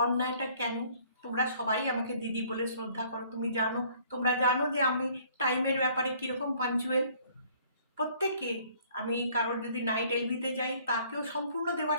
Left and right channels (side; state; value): both; inverted; correlation -0.58